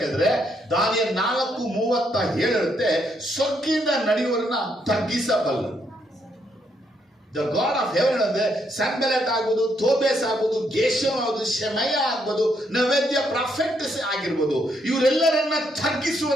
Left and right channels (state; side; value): normal; both; correlation 0.75